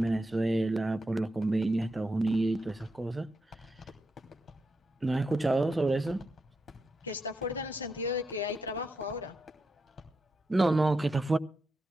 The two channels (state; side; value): normal; both; correlation 0.85